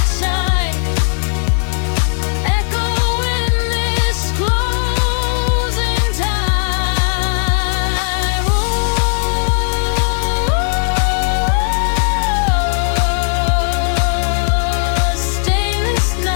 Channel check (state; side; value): silent; right; digital silence